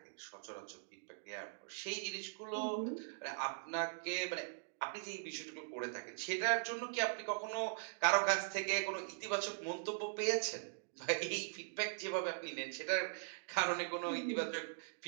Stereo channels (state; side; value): silent; left; digital silence